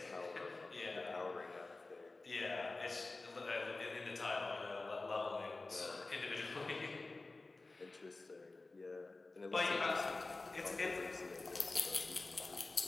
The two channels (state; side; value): quieter; right; 3.3 dB